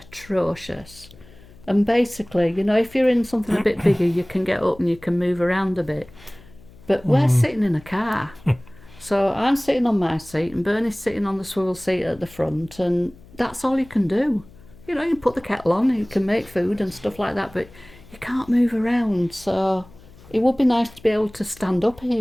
And basically, you know, if you're in something a bit bigger, you can get up and you can move around a bit. But we're sitting in a car. So I'm sitting on my seat and Bernie's sitting on the swivel seat at the front, and that's all you can do. You know, you can put the kettle on and you can make food and stuff like that, but you can't move around. So it would be nice to be able to stand up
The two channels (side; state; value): left; noise; hum, 23 dB below the sound